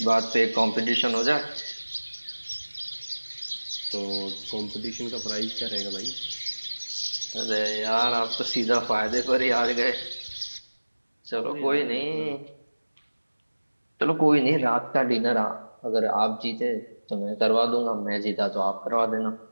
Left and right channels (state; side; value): inverted; both; correlation -1.00